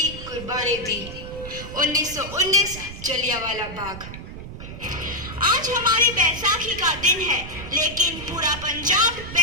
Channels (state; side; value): noise; right; rumble, 11 dB below the sound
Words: कुर्बानी दी। 1919 जलियांवाला बाग। आज हमारी बैसाखी का दिन है, लेकिन पूरा पंजाब